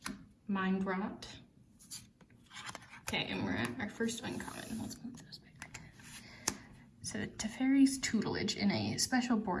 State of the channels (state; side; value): identical; both; correlation 1.00